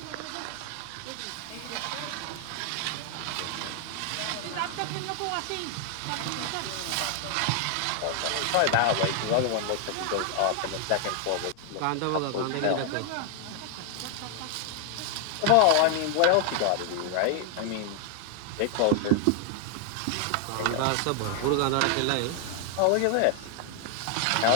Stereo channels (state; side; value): different; both; correlation 0.00